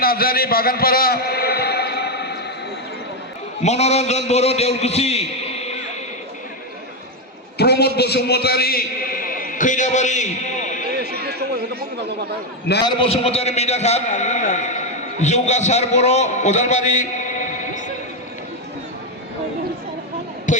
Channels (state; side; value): normal; both; correlation 0.05